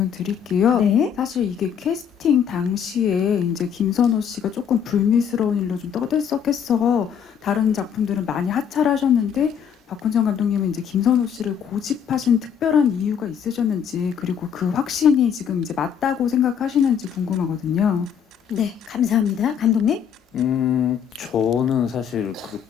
드릴게요. 네. 사실 이게 캐스팅 당시에 이제 김선호 씨가 조금 불미스러운 일로 좀 떠들썩해서 다른 작품들은 많이 하차하셨는데 박훈정 감독님은 이제 김선호 씨를 고집하신 특별한 이유가 있으셨는지, 그리고 그 확신이 지금 이제 맞다고 생각하시는지 궁금하거든요. 네, 감사합니다. 감독님. 저는 사실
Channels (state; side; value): quieter; right; 8.0 dB